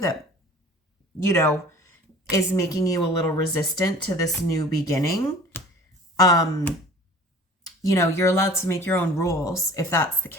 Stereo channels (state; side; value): normal; both; correlation 0.46